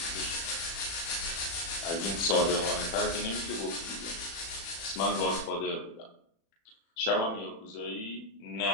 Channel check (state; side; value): late; right; 36 ms